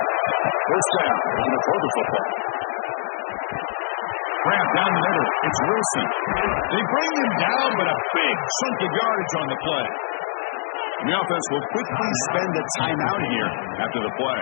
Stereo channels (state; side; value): silent; right; digital silence